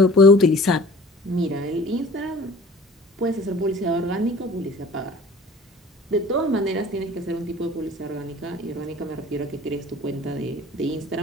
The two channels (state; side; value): normal; both; correlation 0.46